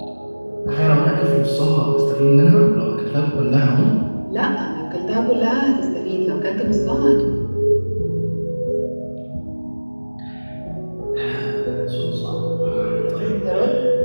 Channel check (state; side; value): inverted; both; correlation -1.00